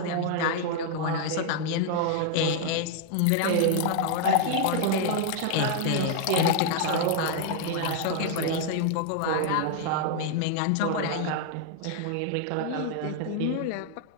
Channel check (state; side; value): different; both; correlation 0.00